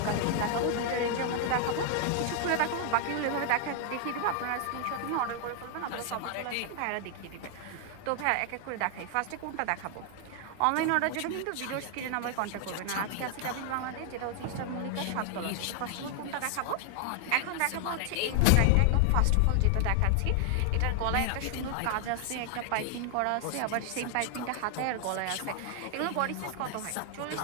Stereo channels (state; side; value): different; both; correlation 0.00